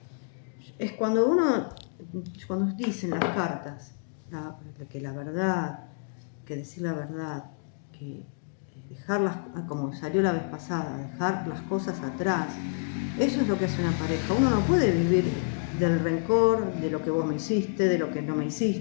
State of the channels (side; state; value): right; silent; digital silence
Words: es cuando dicen las cartas, que la verdad, que decir la verdad, que dejarlas, como salió la vez pasada, dejar las cosas atrás. Eso es lo que hace una pareja. Uno no puede vivir del rencor, de lo que vos me hiciste, de lo que no me